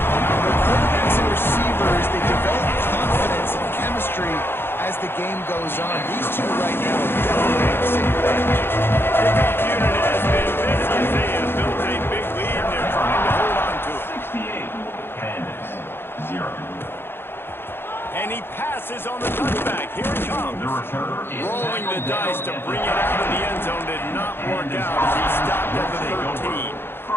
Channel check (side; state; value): right; late; 0.11 ms